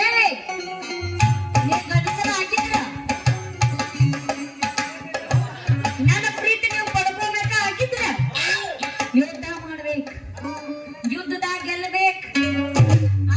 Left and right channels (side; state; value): both; identical; correlation 1.00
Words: ಗಂಡಸರ ಹಾಕಿದ್ರ ನನ್ನ ಪ್ರೀತಿ ನೀವು ಪಡ್ಕೋಬೇಕ ಹಾಕಿದ್ರ. ಯುದ್ಧ ಮಾಡ್ಬೇಕು, ಯುದ್ಧದಾಗ ಗೆಲ್ಲಬೇಕು,